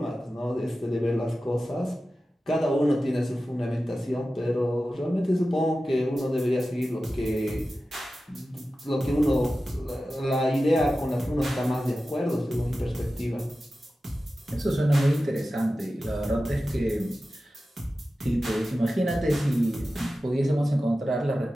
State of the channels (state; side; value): normal; both; correlation 0.94